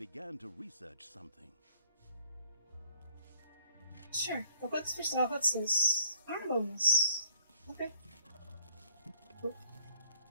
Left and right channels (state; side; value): inverted; both; correlation -0.60